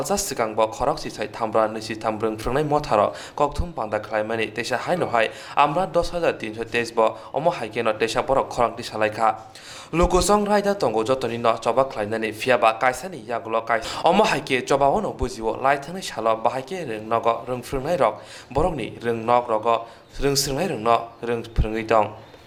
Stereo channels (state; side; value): identical; both; correlation 1.00